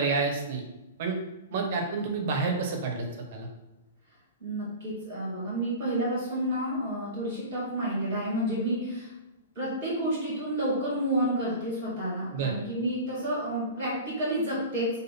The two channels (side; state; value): both; inverted; correlation -0.32